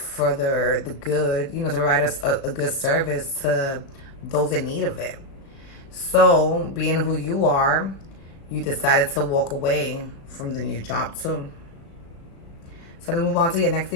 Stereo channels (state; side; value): late; right; 36 ms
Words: the good, you know, to provide us a good service to those in need of it. So, being who you are, you decided to walk away from the new job too. So let's move on to your next